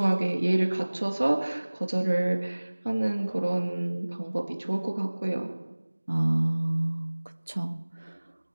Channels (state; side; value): inverted; both; correlation -1.00